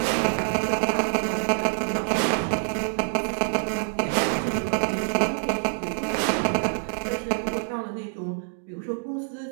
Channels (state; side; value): silent; left; digital silence